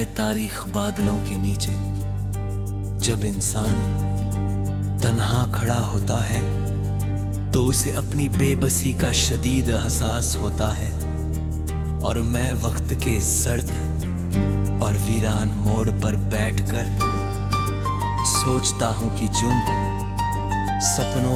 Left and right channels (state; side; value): identical; both; correlation 1.00